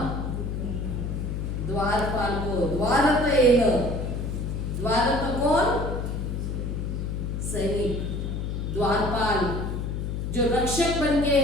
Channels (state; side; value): noise; left; hum, 3 dB below the sound